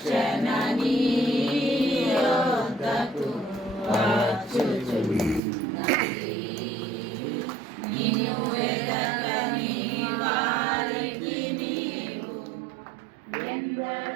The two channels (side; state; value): left; drops out; at 5.4 s